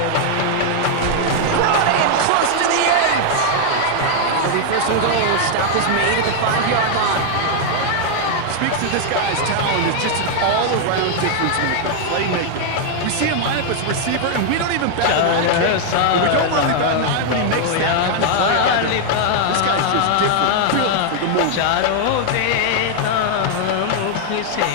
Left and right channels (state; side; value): different; both; correlation 0.00